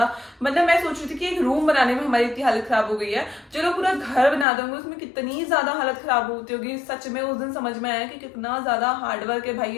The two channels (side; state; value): right; drops out; at 4.5 s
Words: मतलब मैं सोच रही थी कि एक रूम बनाने में हमारी इतनी हालत खराब हो गई है, चलो पूरा घर बना दूंगी उसमें कितनी ज्यादा हालत खराब होती होगी। सच में उस दिन समझ में आया कि कितना ज्यादा हार्डवर्क है भाई